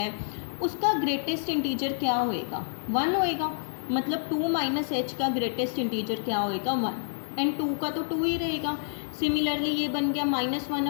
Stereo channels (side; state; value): right; silent; 59 dB below the other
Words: उसका ग्रेटेस्ट इंटीजर क्या होएगा, 1 होएगा। मतलब 2 माइनस एच का ग्रेटेस्ट इंटीजर क्या होएगा, 1, एंड 2 का तो 2 ही रहेगा। सिमिलरली ये बन गया -1